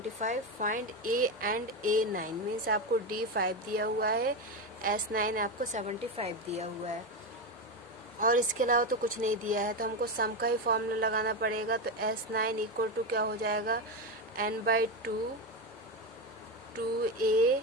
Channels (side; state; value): both; normal; correlation 0.14